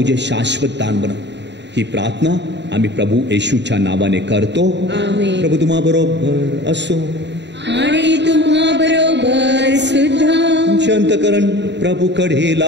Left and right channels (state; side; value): late; left; 0.51 ms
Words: शाश्वत दान बनव. ही प्रार्थना आम्ही प्रभू येशूच्या नावाने करतो. आमेन. प्रभू तुम्हा बरोबर असो आणि तुम्हा बरोबर सुद्धा. तुमचे अंतःकरण प्रभूकडे